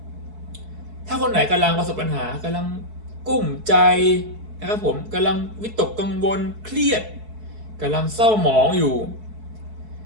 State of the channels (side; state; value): left; late; 4.6 ms